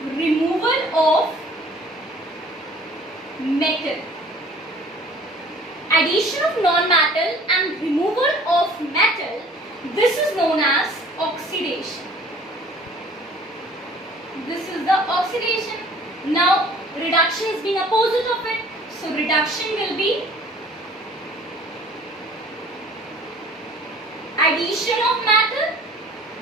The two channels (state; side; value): normal; both; correlation 0.51